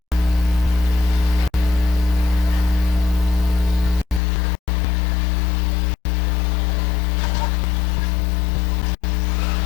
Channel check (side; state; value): right; drops out; at 4.2 s